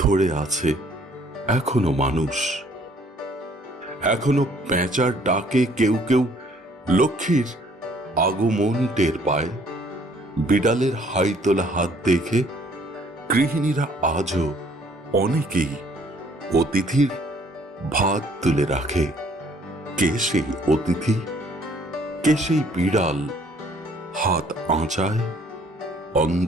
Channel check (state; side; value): normal; both; correlation 0.60